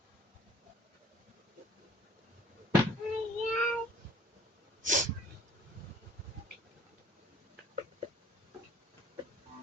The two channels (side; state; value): both; normal; correlation 0.53